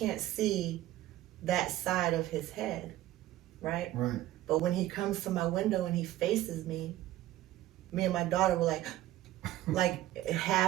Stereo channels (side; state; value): left; quieter; 14.7 dB